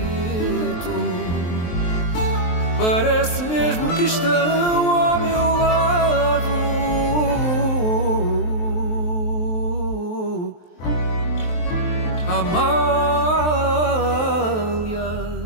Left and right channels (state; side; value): late; right; 23 ms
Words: Parece mesmo que estão ao meu lado, Amália,